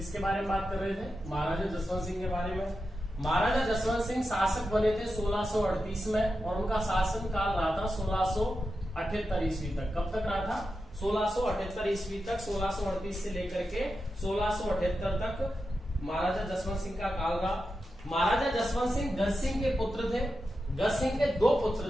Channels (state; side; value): normal; both; correlation 0.89